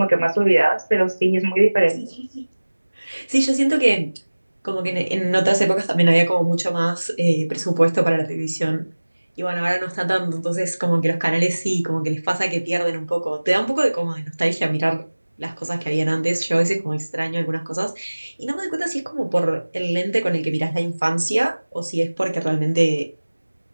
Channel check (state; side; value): inverted; both; correlation -1.00